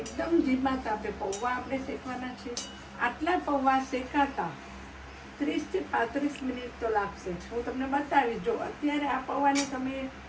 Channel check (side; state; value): both; identical; correlation 1.00